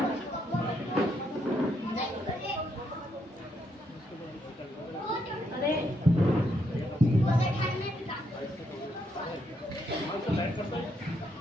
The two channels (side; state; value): both; normal; correlation 0.76